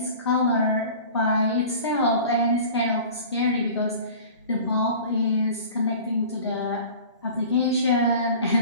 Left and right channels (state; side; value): inverted; both; correlation -0.41